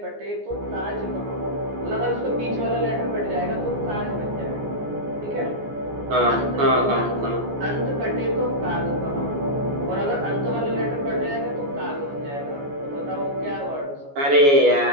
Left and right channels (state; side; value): late; left; 14 ms